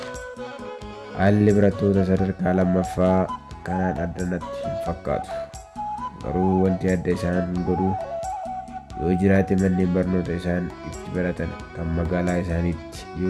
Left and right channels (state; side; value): identical; both; correlation 1.00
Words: Haalli barattoota sadarkaa lammaffaa kanaan addanatti hin fakkaatu. Garuu wanti adda isaan godhu yoo jiraate manneen barnoota isaan itti baratan kan magaalaa isaaniitti